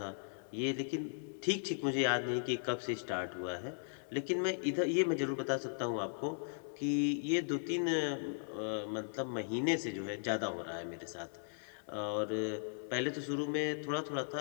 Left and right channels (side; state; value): right; silent; 53 dB below the other